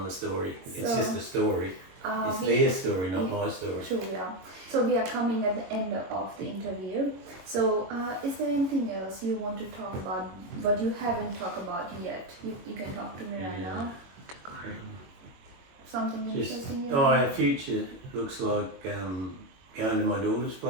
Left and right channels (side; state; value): left; late; 22 ms